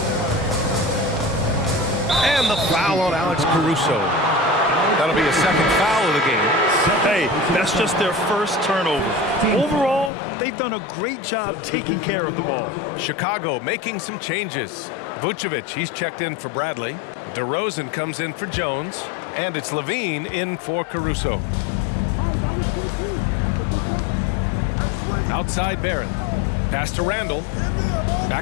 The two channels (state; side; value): drops out; right; at 10.1 s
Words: And the foul on Alex Caruso. That'll be a second foul of the game. Hey, that's just their first turnover. Overall, they've done a great job taking care of the ball. Chicago making some changes. Vucevic, he's checked in for Bradley. DeRozan comes in for Jones. And it's Levine in for Caruso. Outside Barrett. Pass to Randall.